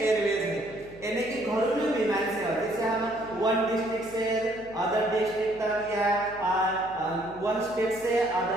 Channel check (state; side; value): noise; left; hum, 21 dB below the sound